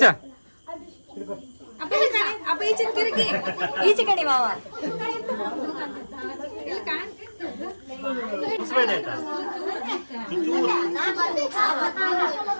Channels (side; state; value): both; inverted; correlation -1.00